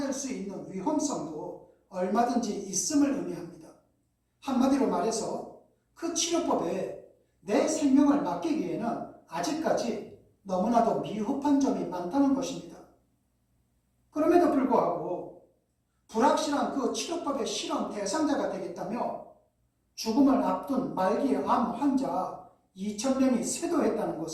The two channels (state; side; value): identical; both; correlation 1.00